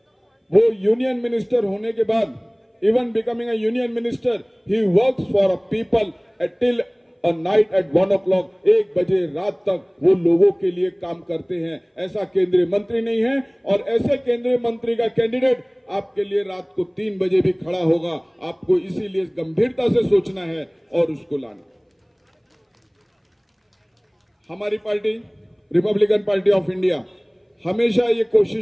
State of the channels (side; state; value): both; identical; correlation 1.00